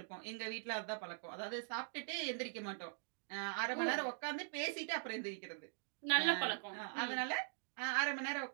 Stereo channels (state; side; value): silent; left; digital silence